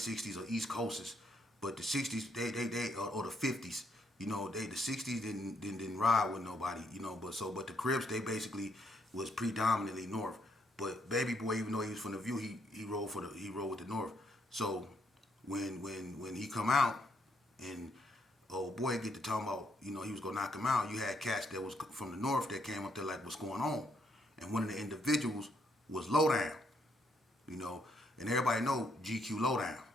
or East Coasters. But the 60s, they or the 50s, the 60s didn't ride with nobody, but the Crips, they basically was predominantly North. But baby boy, even though he was from the View, he rolled with the North. So when he come out and old boy get to talking about, he was gonna knock him out, you had cats that was from the North that came up there like, what's going on? And one of the individuals was Lowdown, and everybody know GQ Lowdown,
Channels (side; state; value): both; normal; correlation 0.73